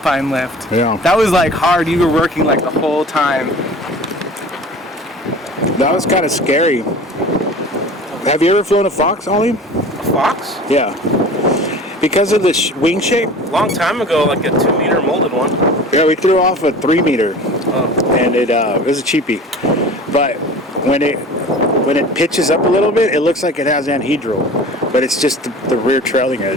lift. Yeah. That was like hard. You were working like the whole time. That was kind of scary. Have you ever flown a Fox, Ollie? A Fox? Yeah. Because of the wing shape? Long time ago, like a 2-meter molded one. Yeah, we threw off a 3-meter. Oh. And it was a cheapie. But when it pitches up a little bit, it looks like it has anhedral. But it's just the rear trailing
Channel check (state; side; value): normal; both; correlation 0.40